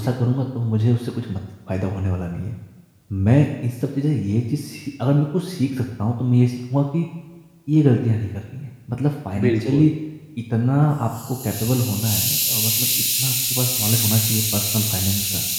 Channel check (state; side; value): identical; both; correlation 1.00